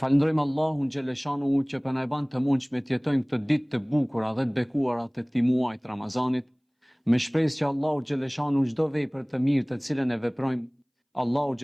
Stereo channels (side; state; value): both; identical; correlation 1.00